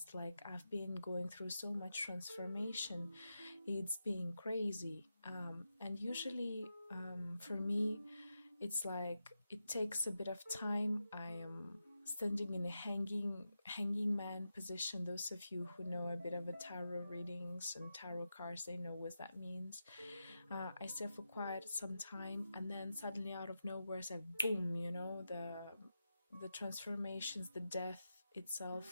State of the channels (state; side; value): inverted; both; correlation -0.89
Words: Like, I've been going through so much transformation. It's been crazy. And usually for me, it's like it takes a bit of time. I am standing in a hanging man position. Those of you who know a bit of a tarot readings and tarot cards, they know what that means. I stay for quite some time, and then suddenly out of nowhere it's like boom, the transformations, the death